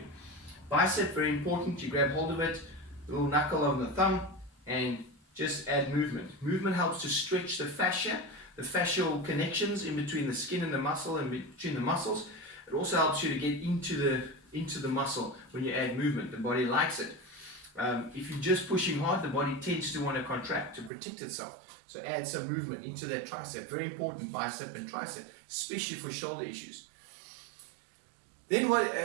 Bicep, very important. You grab hold of it, little knuckle on the thumb, and just add movement. Movement helps to stretch the fascia, the fascial connections in between the skin and the muscle, and between the muscles. It also helps you to get into the muscle when you add movement. The body likes it. If you're just pushing hard, the body tends to want to contract to protect itself. So add some movement into that tricep. Very important, bicep and tricep, especially for shoulder issues. Then what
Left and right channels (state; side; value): drops out; left; at 20.9 s